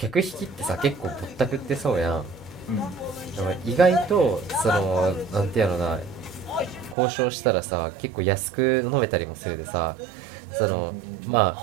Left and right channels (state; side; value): drops out; left; at 7.0 s